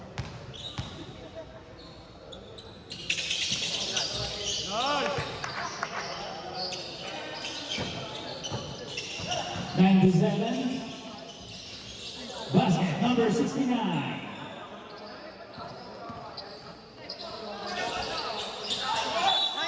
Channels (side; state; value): both; identical; correlation 1.00